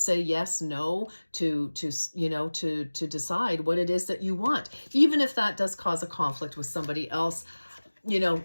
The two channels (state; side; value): inverted; both; correlation -1.00